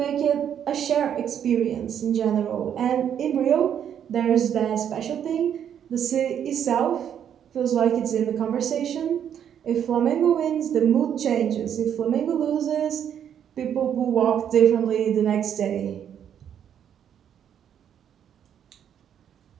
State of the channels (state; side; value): quieter; left; 9.1 dB